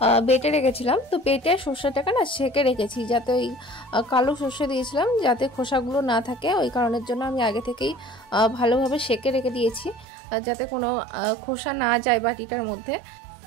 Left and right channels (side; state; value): left; drops out; at 10.1 s